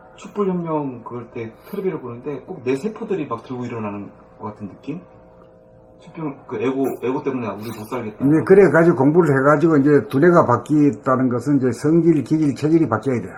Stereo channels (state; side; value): identical; both; correlation 1.00